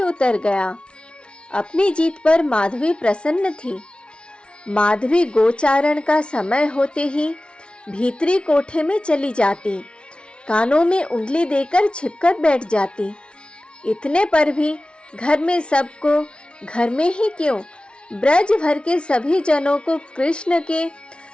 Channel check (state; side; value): late; right; 0.058 ms